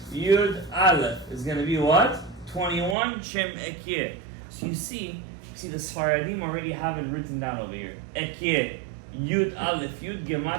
Yud, aleph is going to be what? 21 shem ekye. So you see the Sfaradim already have it written down over here. Ekye, Yud, aleph, Yud,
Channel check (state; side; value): drops out; left; at 3.0 s